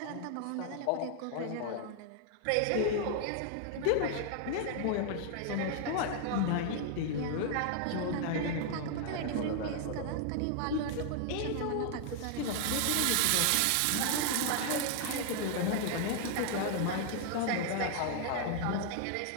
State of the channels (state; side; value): different; both; correlation 0.00